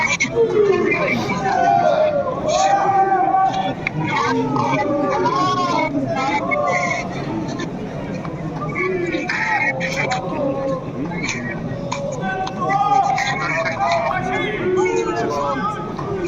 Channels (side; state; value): both; identical; correlation 1.00